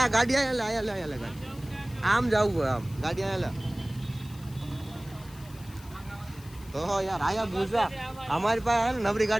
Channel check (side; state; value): left; noise; hiss, 22 dB below the sound